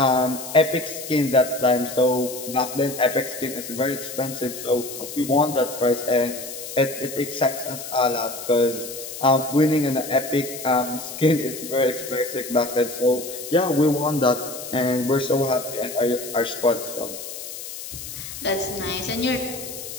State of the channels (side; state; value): left; noise; hiss, 10 dB below the sound